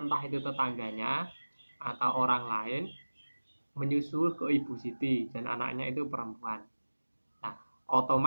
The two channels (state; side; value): inverted; both; correlation -1.00